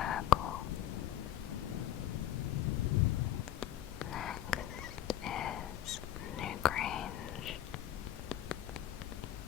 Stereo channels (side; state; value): right; quieter; 11.5 dB